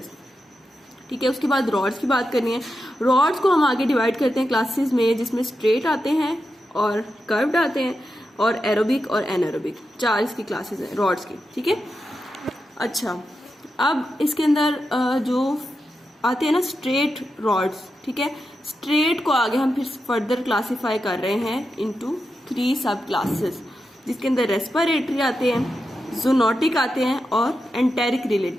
ठीक है, उसके बाद रॉड्स की बात करनी है। रॉड्स को हम आगे डिवाइड करते हैं क्लासेस में, जिसमें स्ट्रेट आते हैं और कर्व्ड आते हैं और एरोबिक और एनारोबिक, 4 इसकी क्लासेस हैं रॉड्स की। ठीक है, अच्छा, अब इसके अंदर जो आते हैं ना स्ट्रेट रॉड्स। ठीक है, स्ट्रेट को आगे हम फिर फर्दर क्लासिफाई कर रहे हैं इनटू 3 सब क्लासेस, जिसके अंदर रेस्पिरेटरी आते हैं, जूनोटिक आते हैं और एंटेरिक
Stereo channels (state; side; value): normal; both; correlation 0.88